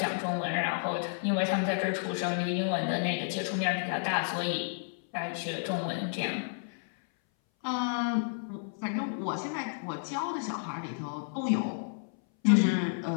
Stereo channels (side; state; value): right; silent; 57 dB below the other